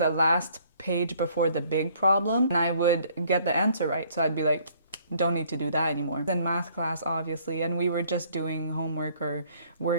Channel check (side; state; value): both; inverted; correlation -0.61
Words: last page before the big problem and I would get the answer right. So I'd be like, don't need to do that anymore. In math class, obviously, and we were just doing homework or